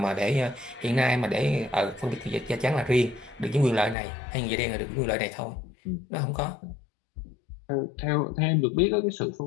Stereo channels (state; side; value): drops out; right; at 4.0 s